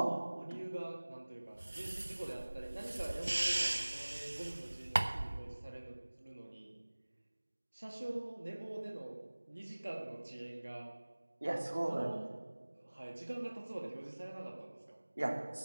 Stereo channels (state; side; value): inverted; both; correlation -1.00